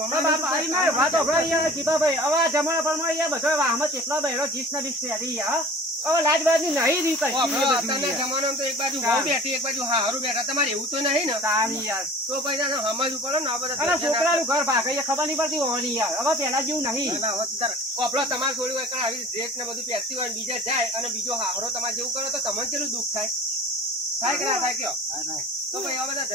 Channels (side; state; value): both; normal; correlation 0.42